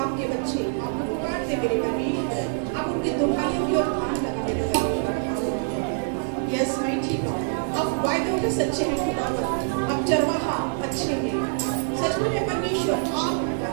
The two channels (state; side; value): silent; left; digital silence